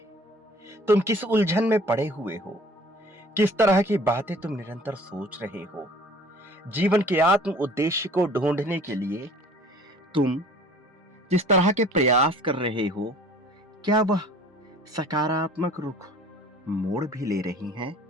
तुम किस उलझन में पड़े हुए हो? किस तरह की बातें तुम निरंतर सोच रहे हो? जीवन के आत्म उद्देश्य को ढूंढने के लिए तुम जिस तरह के प्रयास कर रहे हो, क्या वह सकारात्मक रुख मोड़ भी ले रही हैं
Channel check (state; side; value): normal; both; correlation 0.50